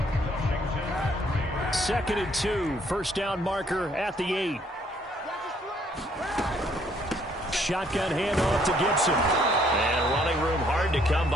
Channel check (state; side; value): normal; both; correlation 0.66